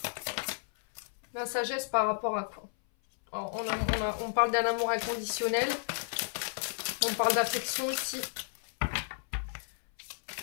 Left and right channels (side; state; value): right; silent; 56 dB below the other